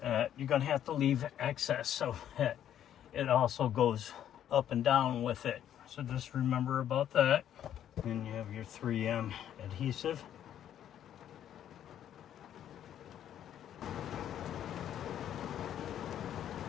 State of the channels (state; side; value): quieter; right; 10.5 dB